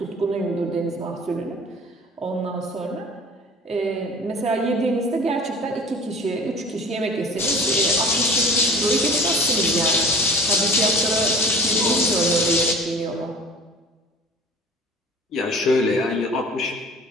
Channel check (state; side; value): normal; both; correlation 0.44